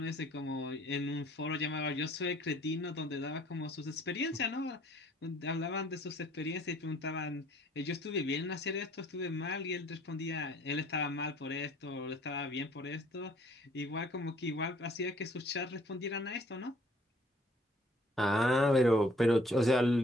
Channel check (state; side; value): normal; both; correlation 0.58